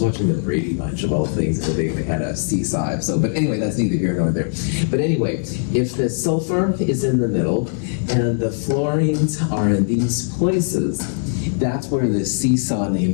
the Brady Bunch of all things, and they had a seesaw episode. But anyway, that's neither here nor there. But anyway, if the sulfur is in the middle and the fluorines are in these places, that's where the seesaw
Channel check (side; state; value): right; silent; 61 dB below the other